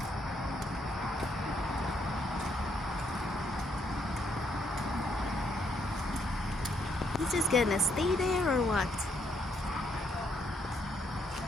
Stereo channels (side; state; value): both; normal; correlation 0.73